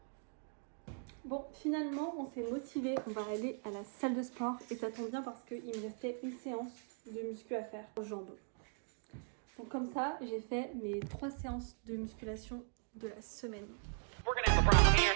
Bon, finalement on s'est motivé, on va aller à la salle de sport et ça tombe bien parce qu'il me restait une séance de muscu à faire aux jambes. Donc comme ça, j'ai fait mes 3 séances de musculation de la semaine.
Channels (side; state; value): left; silent; 51 dB below the other